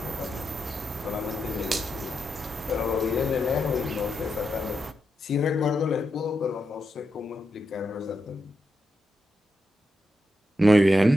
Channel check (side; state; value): both; normal; correlation 0.85